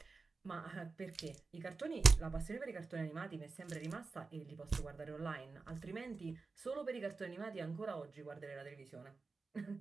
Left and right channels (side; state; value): left; quieter; 4.2 dB